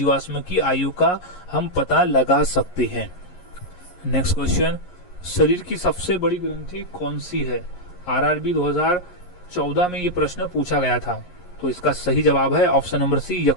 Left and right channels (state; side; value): late; right; 11 ms